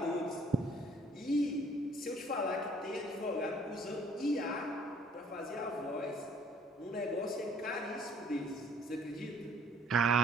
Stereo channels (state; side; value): normal; both; correlation 0.59